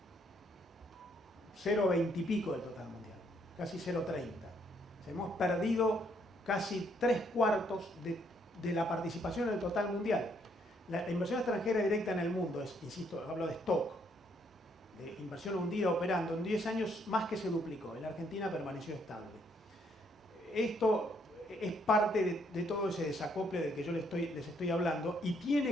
0,20 y pico del total mundial, casi 0,30. Hemos perdido casi 3/4 de la participación en el total mundial. La inversión extranjera directa en el mundo, insisto, hablo de stock, de inversión hundida operando, en 10 años más que se duplicó. En la Argentina permaneció estable. Esto es parte de todo ese desacople del que yo les estoy hablando y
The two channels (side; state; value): both; normal; correlation 0.70